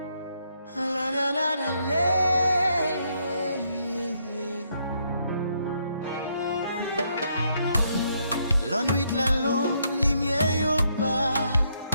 nuit la longue, lumière yo bas,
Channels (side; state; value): both; inverted; correlation -0.75